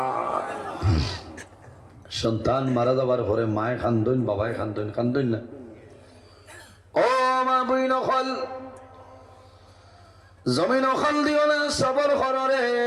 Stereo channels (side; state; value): both; identical; correlation 1.00